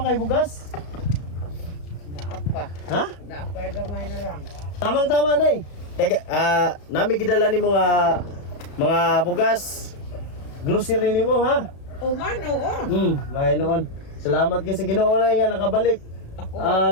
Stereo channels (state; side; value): late; right; 34 ms